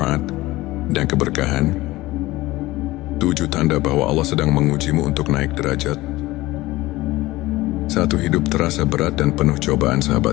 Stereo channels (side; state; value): right; quieter; 18.8 dB